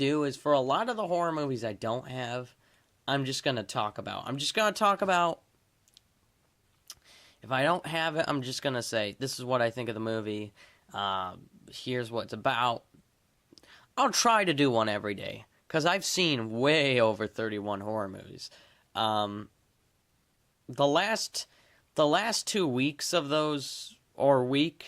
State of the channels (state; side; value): identical; both; correlation 1.00